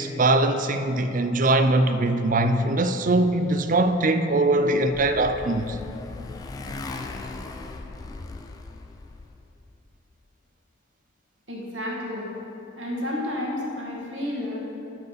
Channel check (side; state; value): both; normal; correlation 0.36